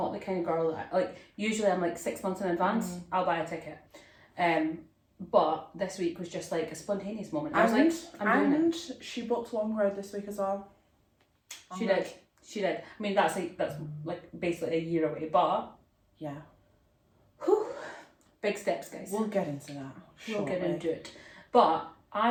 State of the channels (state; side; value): identical; both; correlation 1.00